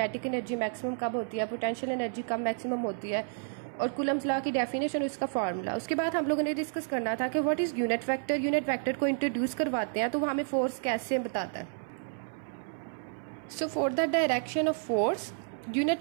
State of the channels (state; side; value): silent; left; 57 dB below the other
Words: एनर्जी मैक्सिमम कब होती है, पोटेंशियल एनर्जी कब मैक्सिमम होती है, और कूलम्स लॉ की डेफिनेशन और उसका फार्मूला। उसके बाद हम लोगों ने डिस्कस करना था कि what is unit vector. Unit vector को इंट्रोड्यूस करवाते हैं तो वो हमें फोर्स कैसे बताता है। So for the direction of force